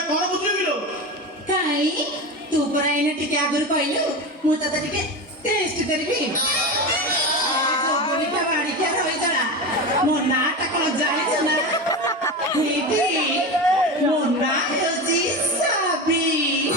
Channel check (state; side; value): normal; both; correlation 0.23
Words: କଣ ବୁଝିଲୁ? କାଇଁ ତୁ ପରା ଏଇନେ ଟିକେ ଆଗରୁ କହିଲୁ ମୁଁ ତତେ ଟିକେ ଟେଷ୍ଟ କରିବି। ଯୋଗନିକା ବାଡ଼ିକିଆ ରହିଗଲା। ମୋ ନାଁଟା କଣ ଜାଣିଛୁ ନା? ଏଇଠି ମୋ ନାଁ ହେଉଛି ସାବି।